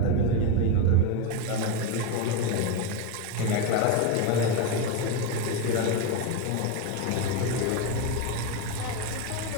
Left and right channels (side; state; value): both; different; correlation 0.03